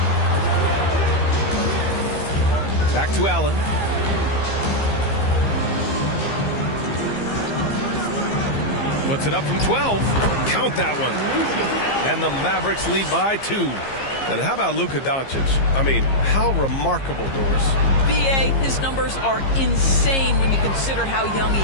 Back to Allen. Puts it up from 12. Count that one. And the Mavericks lead by 2. And how about Luka Doncic? I mean, how remarkable, Doris. B.A., his numbers are insane when you consider how young he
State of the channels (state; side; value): late; right; 15 ms